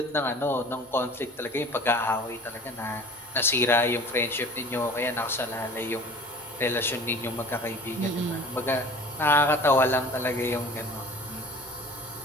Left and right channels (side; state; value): both; normal; correlation 0.43